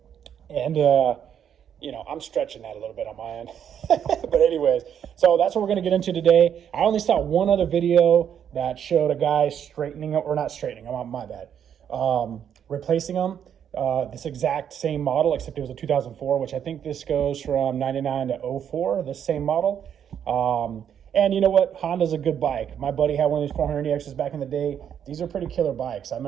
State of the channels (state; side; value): quieter; left; 8.8 dB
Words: And, you know, I'm stretching that a little bit on my end. But anyways, so that's what we're going to get into today. I only saw one other video that showed a guy straightening, or not straightening, my bad, replacing them. This exact same model, except it was a 2004, which I think this goes from 99 to 04, the same model. And you know what? Honda's a good bike. My buddy had one of these 400EXs back in the day. These are pretty killer bikes. I